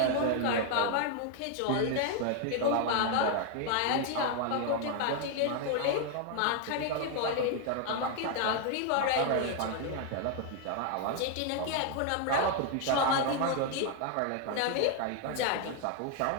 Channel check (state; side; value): different; both; correlation 0.01